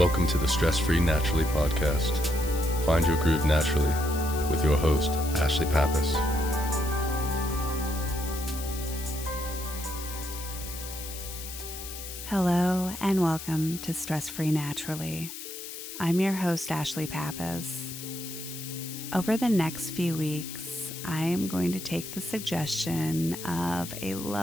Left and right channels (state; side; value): noise; left; hiss, 10 dB below the sound